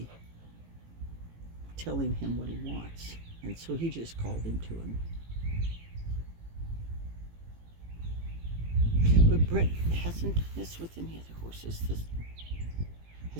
telling him what he wants. And so he just called him to him. But Bret hasn't done this with any other horses.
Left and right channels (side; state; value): left; late; 18 ms